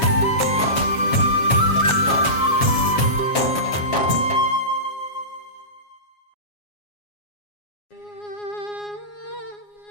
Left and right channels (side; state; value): right; late; 7.3 ms